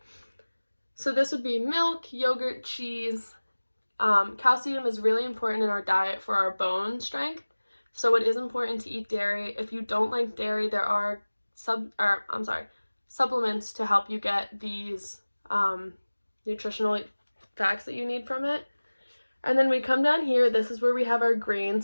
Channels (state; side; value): inverted; both; correlation -1.00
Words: So this would be milk, yogurt, cheese. Calcium is really important in our diet for our bone strength, so it is important to eat dairy. If you don't like dairy, there are supplements to help you get these nutritional facts that you need from it. And then we come down here, this is where we have our